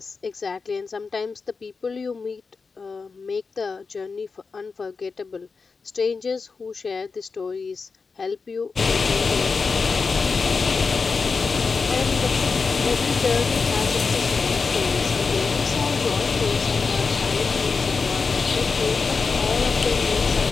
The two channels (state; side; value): quieter; right; 4.7 dB